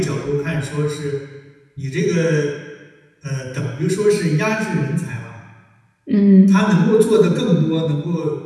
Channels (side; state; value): both; identical; correlation 1.00